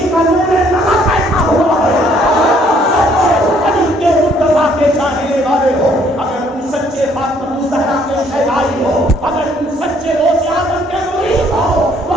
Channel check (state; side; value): normal; both; correlation 0.64